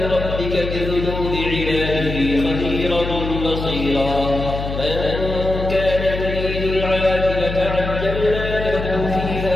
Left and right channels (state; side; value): noise; left; hum, 5 dB below the sound